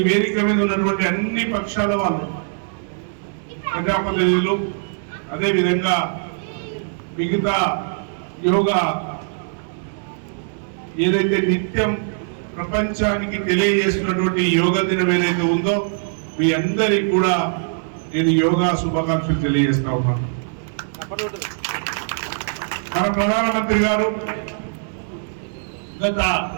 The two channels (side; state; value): left; silent; digital silence